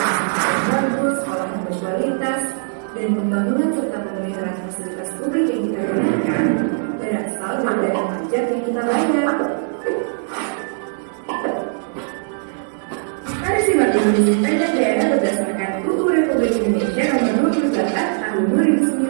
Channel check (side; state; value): left; silent; digital silence